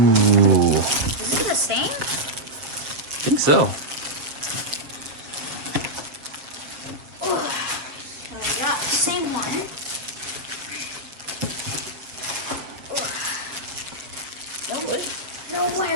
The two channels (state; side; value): late; left; 7.0 ms